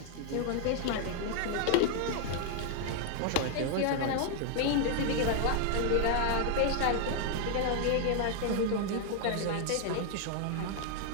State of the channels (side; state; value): both; different; correlation 0.00